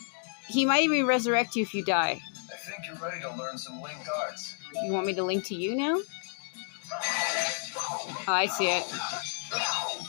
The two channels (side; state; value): right; silent; 57 dB below the other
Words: He might even resurrect you if you die. I think you're ready to learn some linked arts. You want me to link to you now? Oh, I see it.